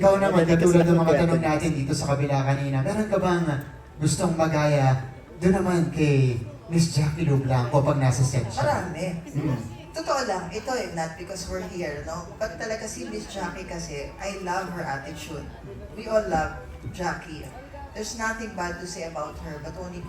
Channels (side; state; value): both; identical; correlation 1.00